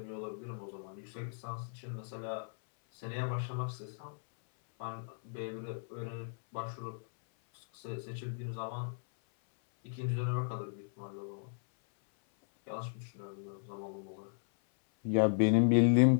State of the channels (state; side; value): silent; right; 54 dB below the other